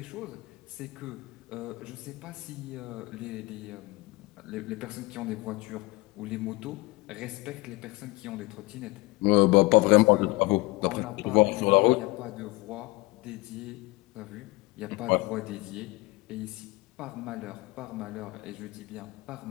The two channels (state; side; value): quieter; right; 22.4 dB